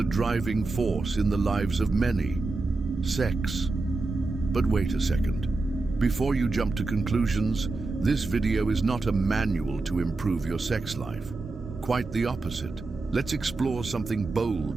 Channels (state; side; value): quieter; left; 3.4 dB